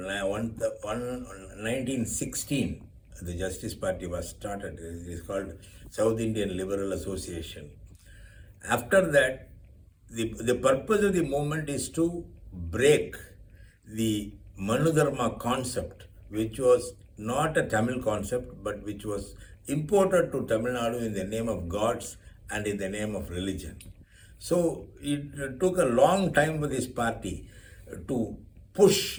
the Justice Party was started. It is called South Indian Liberal Association. After that, the purpose of the movement is to break the Manudharma concept, which was not a Tamil concept, but which was imported to Tamil Nadu in the name of gods and in the name of religion. So it took a long time for this party to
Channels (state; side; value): identical; both; correlation 1.00